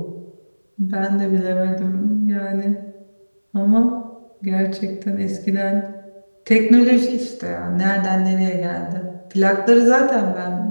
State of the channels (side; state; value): both; inverted; correlation -1.00